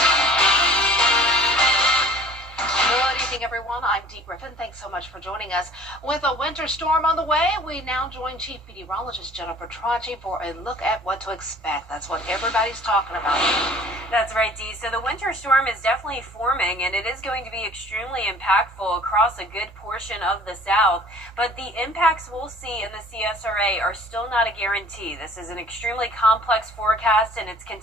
Good evening, everyone. I'm Dee Griffin. Thanks so much for joining us. With a winter storm on the way, we now join Chief Meteorologist Jennifer Tracci for a look at what to expect. That's what everybody's talking about. That's right, Dee. So the winter storm is definitely forming, and it is going to be extremely impactful across a good portion of the South. But the impacts we'll see in the CSRA are still not a guarantee. This is an extremely complex forecast, and it's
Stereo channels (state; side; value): normal; both; correlation 0.50